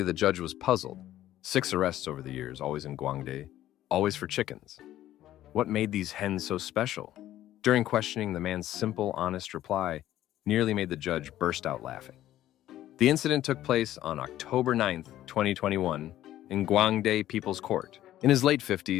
the judge was puzzled. 6 arrests over the years, always in Guangde, always for chickens. What made these hens so special? During questioning, the man's simple, honest reply nearly made the judge burst out laughing. The incident took place on October 9th, 2021, in Guangde People's Court. In his late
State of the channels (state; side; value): quieter; right; 13.4 dB